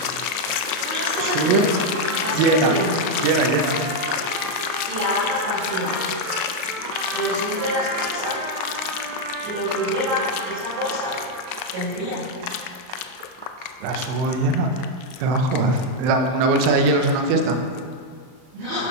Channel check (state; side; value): late; left; 38 ms